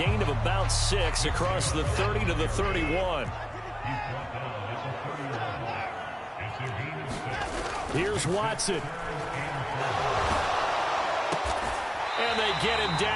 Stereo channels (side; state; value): both; identical; correlation 1.00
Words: of about 6 across the 30 to the 31. Here's Watson. And they get him